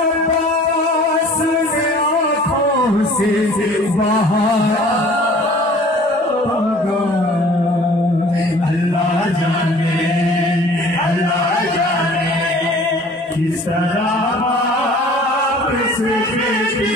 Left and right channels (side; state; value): both; normal; correlation 0.49